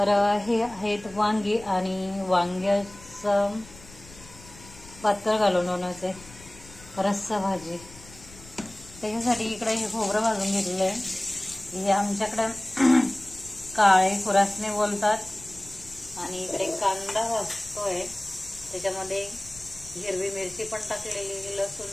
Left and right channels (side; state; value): left; noise; rumble, 20 dB below the sound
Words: हे आहेत वांगी आणि वांग्याचं पातळ घालून बनवायचे रस्सा भाजी. त्याच्यासाठी इकडे हे खोबरं भाजून घेतलेलं आहे. हे आमच्याकडे काळे खुरासने बोलतात. आणि इकडे कांदा भाजतोय, त्याच्यामध्ये हिरवी मिरची पण टाकलेली,